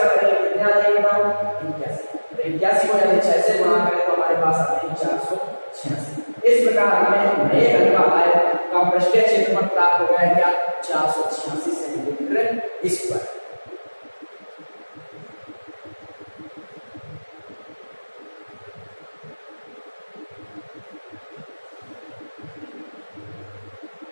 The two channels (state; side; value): inverted; both; correlation -1.00